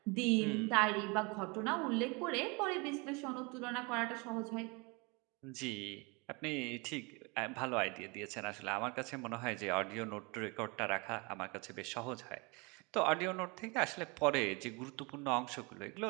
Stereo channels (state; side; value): quieter; left; 28.8 dB